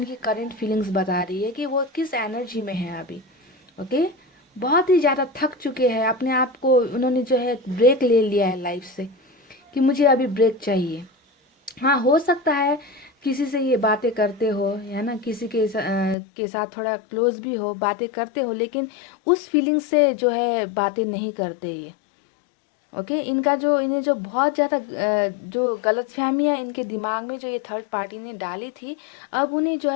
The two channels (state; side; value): drops out; right; at 16.2 s